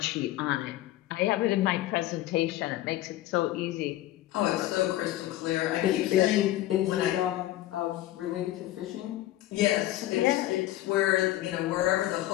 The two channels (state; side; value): quieter; right; 15.1 dB